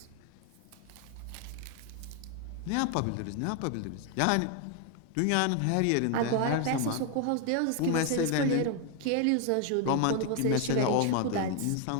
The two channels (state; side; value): different; both; correlation 0.01